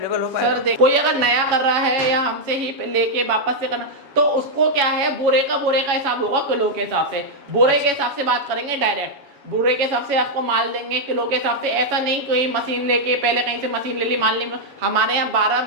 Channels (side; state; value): left; late; 7.1 ms